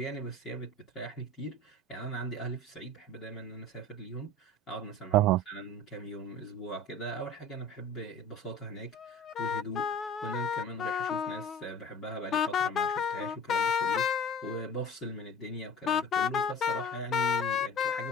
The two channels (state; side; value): normal; both; correlation 0.39